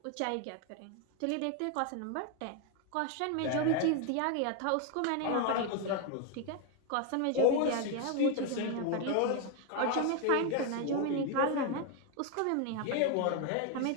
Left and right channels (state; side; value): different; both; correlation 0.01